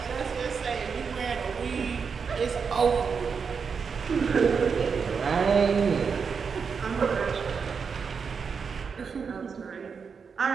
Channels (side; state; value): left; quieter; 5.9 dB